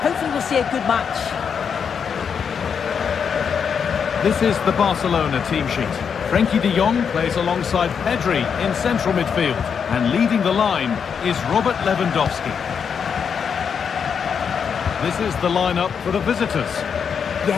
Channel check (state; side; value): quieter; right; 6.8 dB